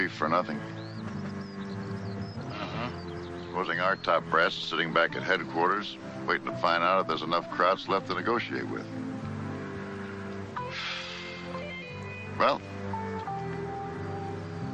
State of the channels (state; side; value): identical; both; correlation 1.00